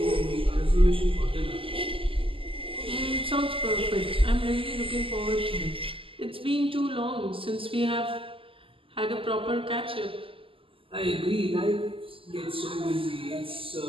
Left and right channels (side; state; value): left; late; 0.26 ms